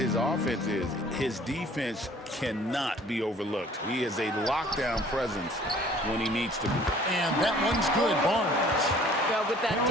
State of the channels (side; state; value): both; normal; correlation 0.53